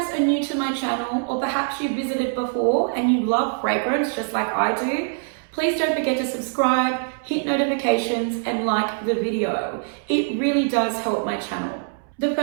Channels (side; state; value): left; silent; 63 dB below the other